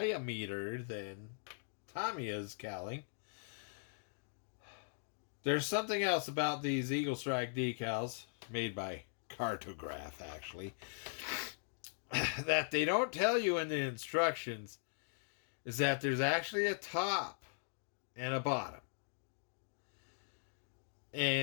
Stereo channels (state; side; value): silent; right; digital silence